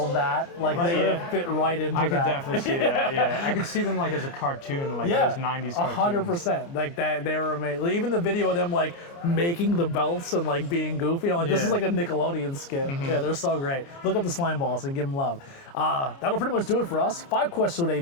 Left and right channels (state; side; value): late; right; 29 ms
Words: of that. Like they would have fit right into that. I could definitely see that, yeah. I could see them like as a cartoon, like those 90s cartoons. 100%. Like that, they were amazing. Even the video of them like making the belts and like being goofy. I'm like, this is like a Nickelodeon skit. Yeah, they're so great. Look up the Slime Balls and give them love. That'll pretty much do it for us. 5 questions